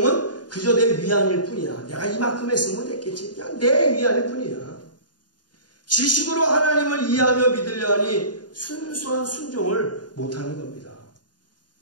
그저 내 위안일 뿐이야. 내가 이만큼 했으면 됐겠지. 그냥 내 위안일 뿐이야. 지식으로 하나님을 이해하며 믿으려 하니 순수한 순종을 못하는 겁니다.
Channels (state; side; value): late; right; 0.70 ms